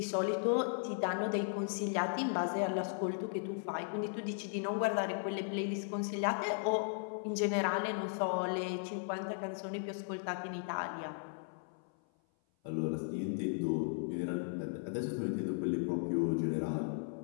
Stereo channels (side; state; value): right; silent; 53 dB below the other